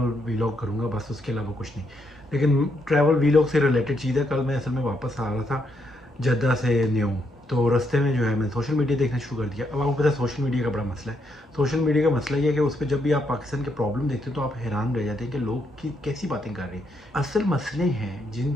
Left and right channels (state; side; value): normal; both; correlation 0.77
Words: वीलॉग करूँगा बस, उसके अलावा कुछ नहीं। लेकिन ट्रैवल वीलॉग से रिलेटेड चीज़ है। कल मैं असल में वापस आ रहा था जद्दा से न्यू, तो रास्ते में जो है मैंने सोशल मीडिया देखना शुरू कर दिया। अब आपको पता है सोशल मीडिया का बड़ा मसला है। सोशल मीडिया का मसला ये है कि उस पर जब भी आप पाकिस्तान के प्रॉब्लम देखते हो तो आप हैरान रह जाते हैं कि लोग की कैसी बातें कर रहे हैं। असल मसले हैं जिन